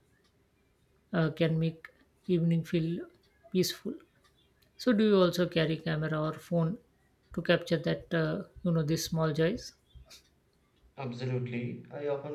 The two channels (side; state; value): both; identical; correlation 1.00